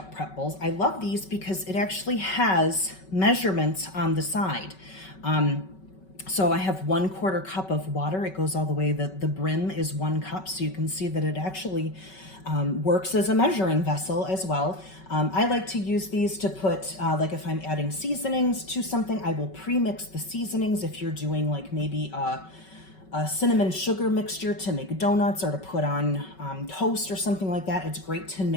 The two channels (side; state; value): right; late; 5.3 ms